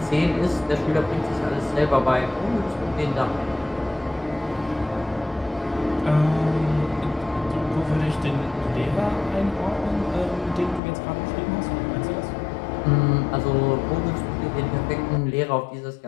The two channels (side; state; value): right; drops out; at 10.8 s